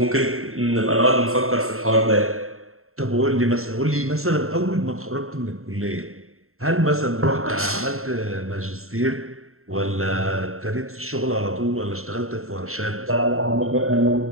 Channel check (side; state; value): left; late; 0.62 ms